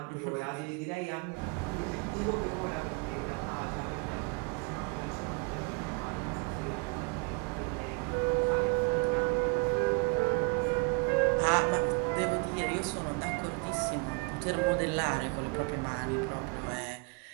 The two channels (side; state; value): left; quieter; 31.9 dB